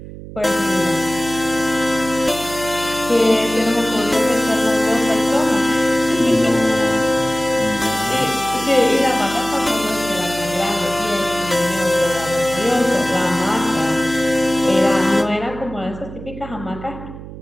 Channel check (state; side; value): noise; right; hum, 13 dB below the sound